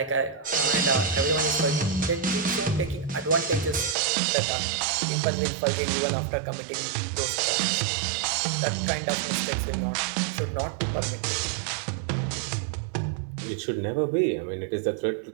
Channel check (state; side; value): drops out; left; at 4.0 s